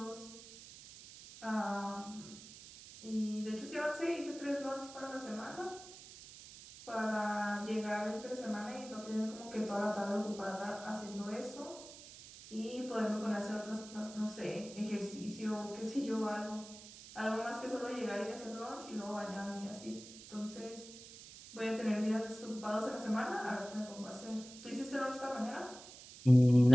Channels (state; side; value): noise; right; hiss, 16 dB below the sound